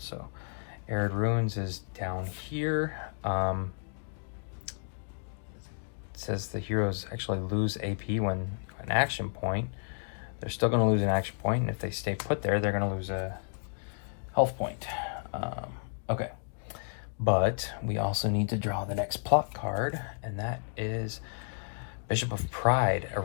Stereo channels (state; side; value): silent; right; digital silence